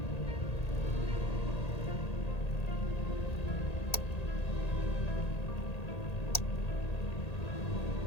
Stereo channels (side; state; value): right; late; 1.8 ms